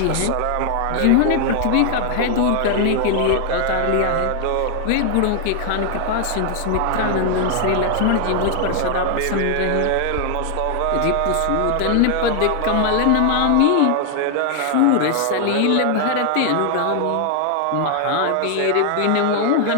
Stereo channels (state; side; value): different; both; correlation 0.00